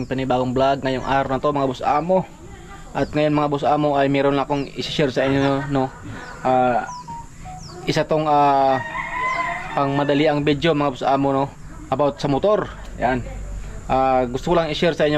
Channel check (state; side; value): identical; both; correlation 1.00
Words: panibagong vlog ngayong araw na to mga boss amo. At ngayon mga boss amo ay meron na akong i-share sa inyo, no? Isa tong pang madali ang video mga boss amo, no? About sa motor. Yan. Gusto ko lang i-share sa